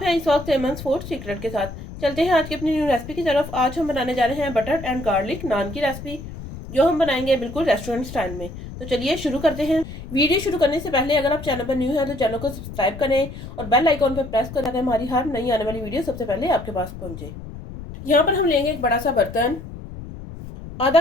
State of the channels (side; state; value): left; noise; rumble, 11 dB below the sound